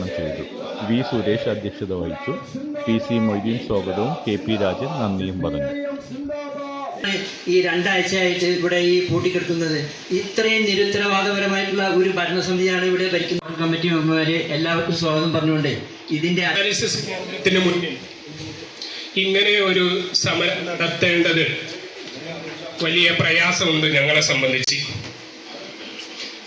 ചെയ്തു. V സുരേഷ് അധ്യക്ഷത വഹിച്ചു. PC മൊയ്തീൻ സ്വാഗതവും KP രാജൻ നന്ദിയും പറഞ്ഞു. ഈ 2 ആഴ്ചയായിട്ട് ഇവിടെ ഈ പൂട്ടിക്കെടുക്കുന്നത് ഇത്രയും നിരുത്തരവാദപരമായിട്ടുള്ള ഒരു ഭരണസമിതിയാണ് ഇവിടെ ഭരിക്കുന്ന കമ്മിറ്റി മെമ്പർമാരെ എല്ലാവർക്കും സ്വാഗതം പറഞ്ഞുകൊണ്ട് ഇതിന്റെ ഡയാലിസിസ് കേന്ദ്രത്തിന് മുന്നിൽ ഇങ്ങനെ ഒരു സമരം നടത്തേണ്ടത് വലിയ പ്രയാസമുണ്ട്. ഞങ്ങളെ സംബന്ധിച്ച്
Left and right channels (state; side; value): identical; both; correlation 1.00